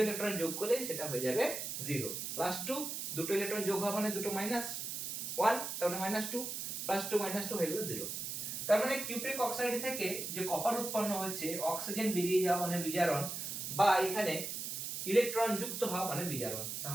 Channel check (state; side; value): noise; right; hiss, 4 dB below the sound